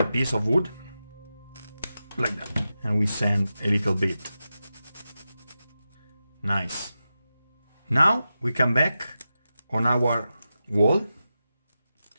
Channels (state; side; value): inverted; both; correlation -0.91